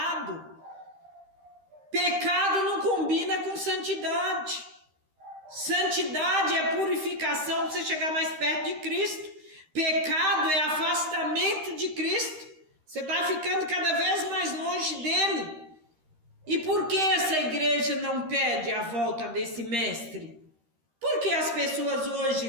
Pecado não combina com santidade. Santidade é purificação para você chegar mais perto de Cristo. Pecado é afastamento de Cristo. Você está ficando cada vez mais longe dele. E por que essa igreja não pede a volta desse mestre? Porque as pessoas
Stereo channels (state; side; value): late; left; 13 ms